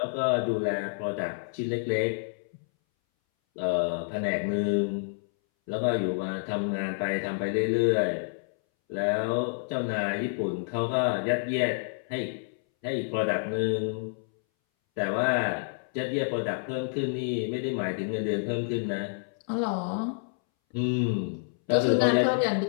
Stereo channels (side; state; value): right; silent; 59 dB below the other